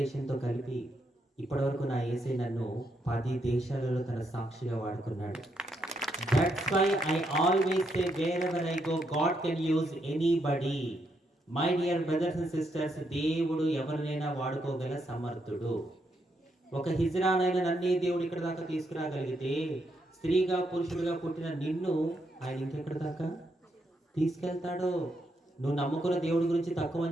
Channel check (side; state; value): both; normal; correlation 0.78